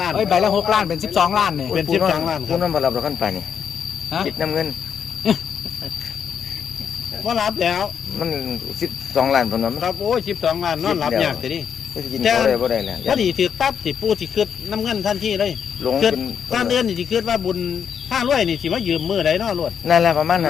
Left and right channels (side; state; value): right; quieter; 7.7 dB